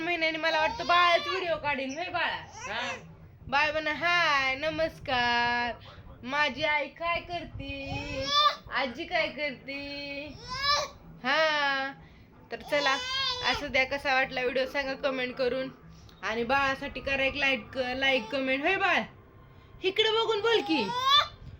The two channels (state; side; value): identical; both; correlation 1.00